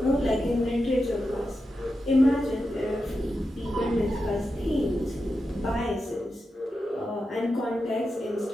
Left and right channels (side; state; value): both; normal; correlation 0.89